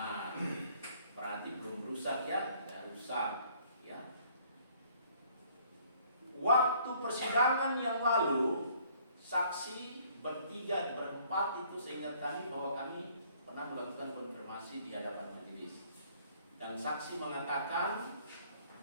Berarti belum rusak ya? Ya rusak. Ya. Waktu persidangan yang lalu, saksi bertiga, berempat itu seingat kami bahwa kami pernah melakukan konfirmasi di hadapan majelis. Dan saksi mengatakan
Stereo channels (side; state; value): both; inverted; correlation -0.60